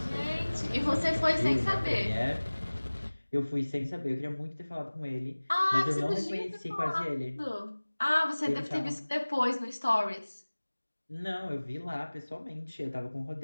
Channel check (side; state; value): both; inverted; correlation -1.00